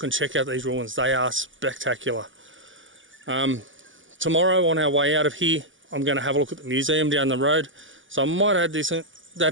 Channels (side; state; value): left; late; 0.56 ms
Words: and check out these ruins. They are spectacular. Tomorrow on our way out of here, I'm going to have a look at the museum down the road. So I might add